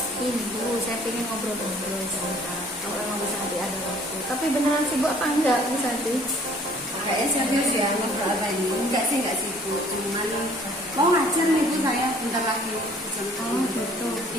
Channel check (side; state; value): both; normal; correlation 0.56